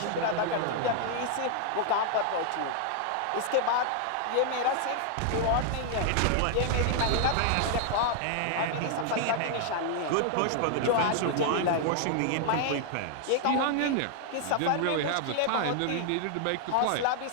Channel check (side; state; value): both; different; correlation 0.00